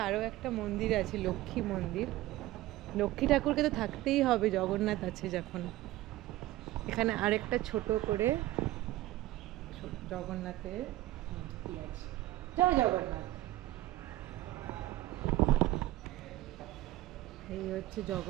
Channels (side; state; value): left; quieter; 16.1 dB